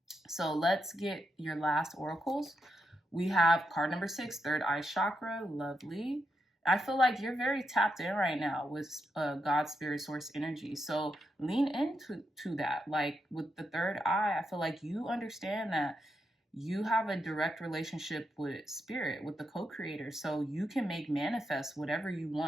So let's get your last oracles. We have card number 6, third eye chakra. Lovely. I feel like you're very tapped in right now with God, spirit, source energy. So lean into that. Like with the third eye, I feel like you understand that you have a direct relationship with spirit, with the co-creator. So you can make manifest whatever you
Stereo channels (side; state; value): both; normal; correlation 0.84